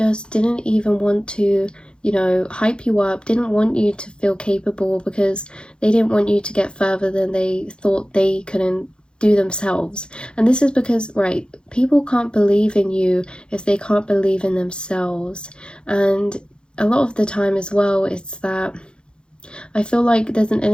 didn't even want to, you know, hype you up, didn't want you to feel capable because they didn't want you to get further than they thought they couldn't do themselves. And this is because, right, people can't believe in you if they can't believe in themselves. And a lot of the time as well, it's that I feel like there's an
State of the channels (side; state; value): right; late; 0.051 ms